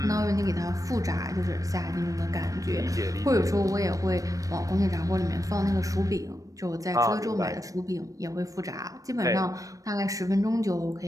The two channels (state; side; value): late; left; 0.16 ms